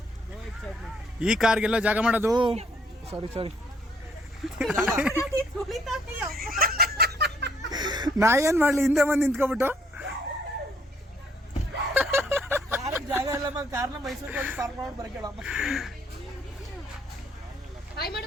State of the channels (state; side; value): normal; both; correlation 0.67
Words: ಈ ಕಾರ್ಗೆಲ್ಲ ಜಾಗ ಮಾಡೋದು ಸಾರಿ ನಾ ಏನ್ ಮಾಡ್ಲಿ, ಹಿಂದೆ ಬಂದು ನಿಂತ್ಕೊಬಿಟ್ಟು. ಜಾಗ ಇಲ್ಲ, ಕಾರ್ನ ಮೈಸೂರಿಗೆ ಹೋಗಿ ಪಾರ್ಕ್ ಮಾಡಿ ಬರಕೇಳಮ್ಮ.